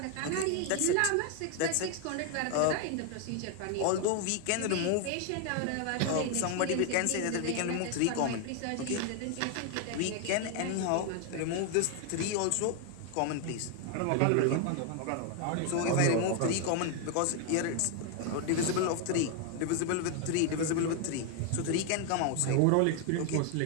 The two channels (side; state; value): both; different; correlation 0.01